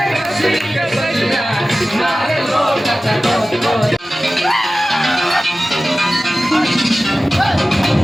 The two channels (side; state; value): both; normal; correlation 0.96